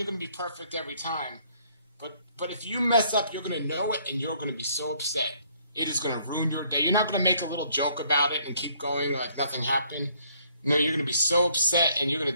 going to be perfect every time, but if you mess up, you're going to know it and you're going to be so upset. It is going to ruin your day. You're not going to make a little joke about it and keep going like nothing happened. You're going to be so upset and you're going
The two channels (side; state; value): both; inverted; correlation -0.65